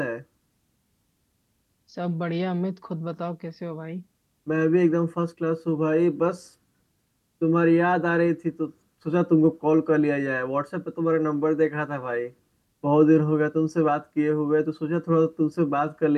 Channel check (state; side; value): identical; both; correlation 1.00